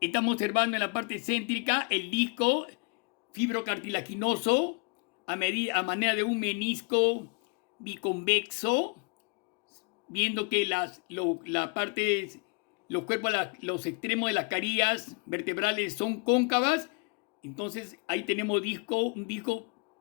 observando en la parte céntrica el disco fibrocartilaginoso a manera de un menisco biconvexo, viendo que los extremos de las carillas vertebrales son cóncavas. Entonces ahí tenemos un disco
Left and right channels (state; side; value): quieter; right; 33.6 dB